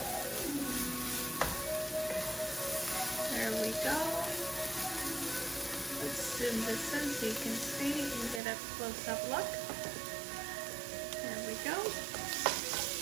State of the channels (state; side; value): drops out; left; at 8.4 s